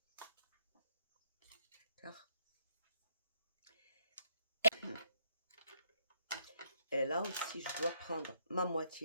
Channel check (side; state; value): both; inverted; correlation -0.73